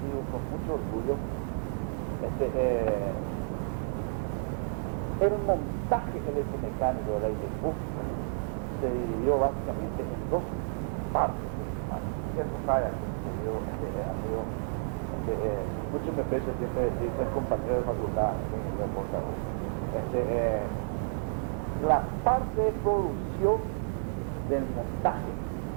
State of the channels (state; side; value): silent; left; digital silence